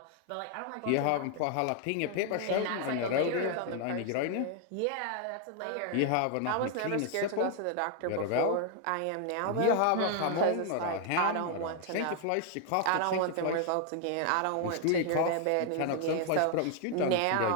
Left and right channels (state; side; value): different; both; correlation 0.00